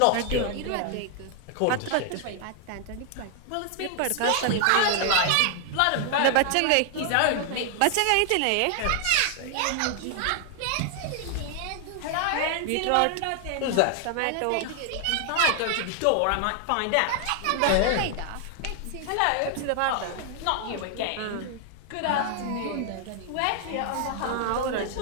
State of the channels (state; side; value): different; both; correlation 0.00